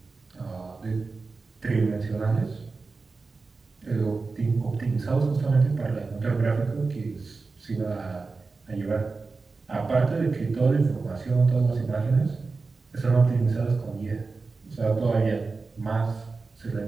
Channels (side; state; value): left; quieter; 4.1 dB